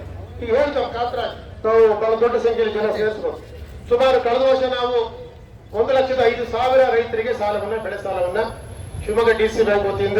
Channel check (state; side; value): identical; both; correlation 1.00